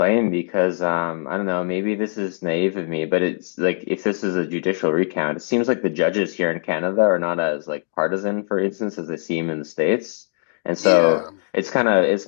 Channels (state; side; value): silent; right; digital silence